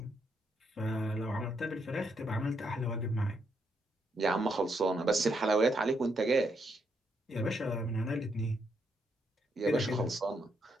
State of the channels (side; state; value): both; normal; correlation 0.77